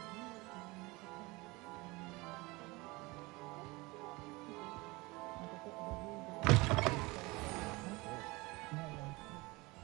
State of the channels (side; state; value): left; quieter; 23.5 dB